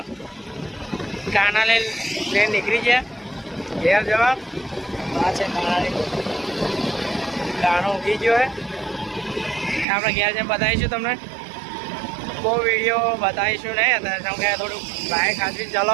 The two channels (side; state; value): left; drops out; at 9.9 s